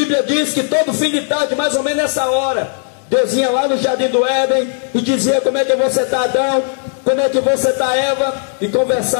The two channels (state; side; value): silent; right; digital silence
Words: diz que todo fim de tarde, mais ou menos nessa hora, Deus ia lá no jardim do Éden e dizia: como é que você está, Adão? Como é que você está, Eva? E